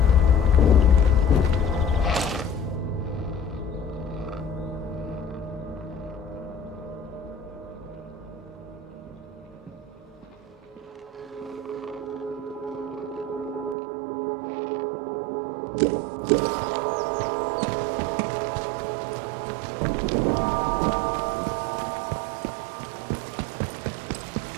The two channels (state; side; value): drops out; left; at 13.8 s